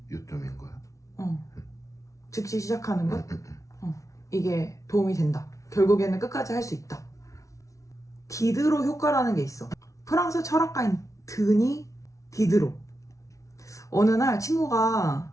요점인 거야? 즉시 시작하는 것? 이게 도움이 된다. 결국에는 끝까지 할 수 있다. 디드로 효과라는 게 있어. 프랑스 철학가인 드니 디드로. 어느 날 친구가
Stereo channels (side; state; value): right; late; 0.15 ms